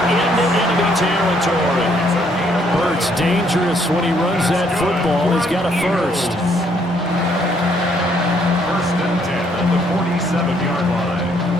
enemy territory. Hurts dangerous when he runs that football. He's got a first. 1st and 10 at the 47-yard line.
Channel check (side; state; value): both; normal; correlation 0.68